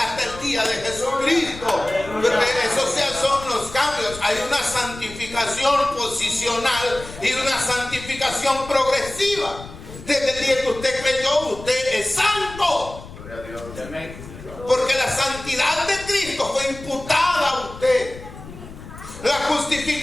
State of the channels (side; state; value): left; noise; rumble, 15 dB below the sound